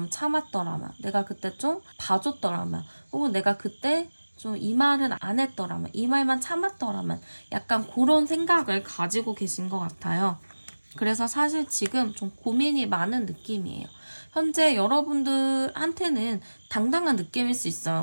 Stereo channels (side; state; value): both; inverted; correlation -1.00